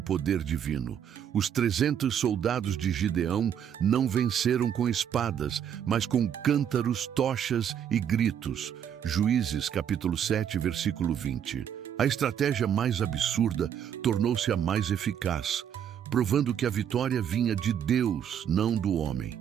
divino. Os 300 soldados de Gideão não venceram com espadas, mas com cântaros, tochas e gritos. Juízes, capítulo 7, versículo 20. A estratégia mais absurda tornou-se a mais eficaz, provando que a vitória vinha de Deus, não do homem.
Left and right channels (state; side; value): quieter; left; 8.9 dB